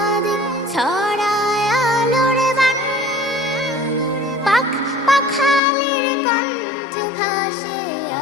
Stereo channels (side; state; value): right; drops out; at 5.6 s